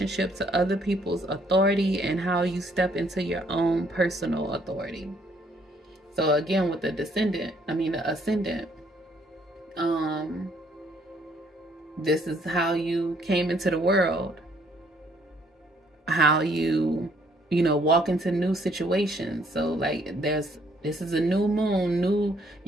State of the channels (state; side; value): normal; both; correlation 0.66